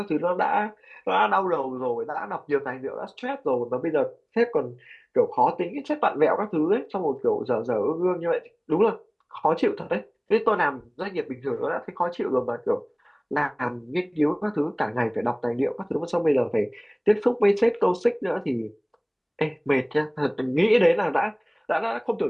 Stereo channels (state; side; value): identical; both; correlation 1.00